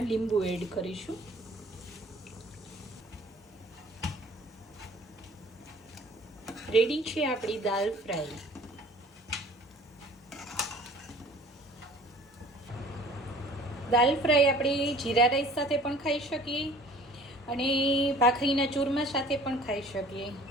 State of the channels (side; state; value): both; normal; correlation 0.50